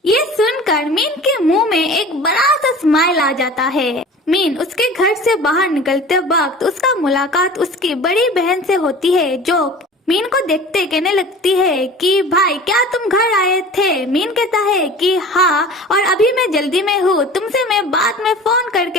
ये सुनकर मीन के मुंह में एक बड़ा सा स्माइल आ जाता है। मीन उसके घर से बाहर निकलते वक्त उसका मुलाकात उसकी बड़ी बहन से होती है, जो मीन को देखते कहने लगती है कि भाई क्या तुम घर आए थे? मीन कहता है कि हाँ, और अभी मैं जल्दी में हूँ, तुमसे मैं बाद में फोन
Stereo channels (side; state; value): both; normal; correlation 0.40